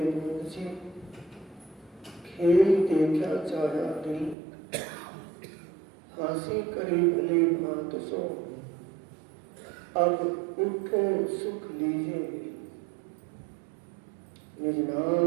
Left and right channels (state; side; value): drops out; left; at 4.4 s